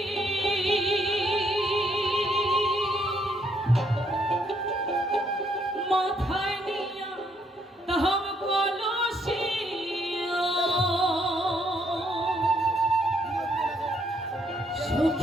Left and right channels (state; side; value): normal; both; correlation 0.71